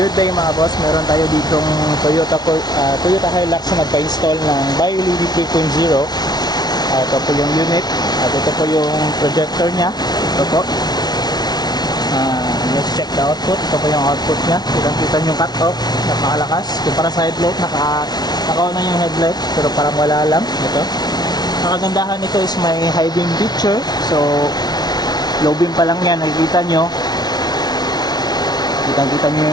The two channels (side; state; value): right; late; 0.19 ms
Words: day mga boss, meron tayo ditong Toyota Hilux na nagpa-install ng BioLED 3.0. Ito po yung unit at ito po yung projector nya. Ito po. Let's check the output. Ito po yung output nya. Kita yung cut-off, napakalakas. Kumpara sa headlight, naka-on na yung headlight pero parang wala lang. Ito. Ang kagandahan nito is may high beam picture. So low beam pa lang yan, nakikita nyo. Kita nyo